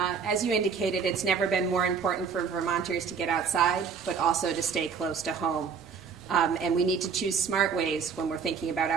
As you indicated, it's never been more important for Vermonters to get outside, but also to stay close to home. And we need to choose smart ways when we're thinking about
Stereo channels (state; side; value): quieter; left; 6.1 dB